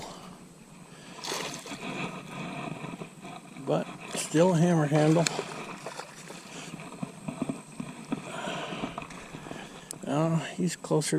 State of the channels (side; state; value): both; identical; correlation 1.00